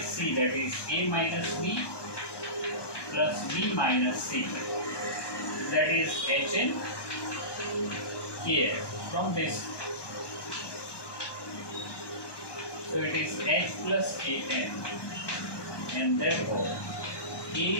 C, that is A minus B plus B minus C, that is Hn Kn from this. So it is H plus Kn, and therefore A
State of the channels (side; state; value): right; late; 1.2 ms